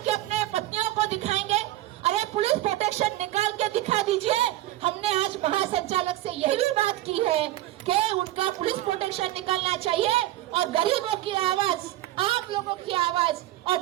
अपने पत्नियों को दिखाएंगे। अरे पुलिस प्रोटेक्शन निकाल के दिखा दीजिए। हमने आज महासंचालक से यही भी बात की है कि उनका पुलिस प्रोटेक्शन निकालना चाहिए, और गरीबों की आवाज, आप लोगों की आवाज और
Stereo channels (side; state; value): left; quieter; 15.5 dB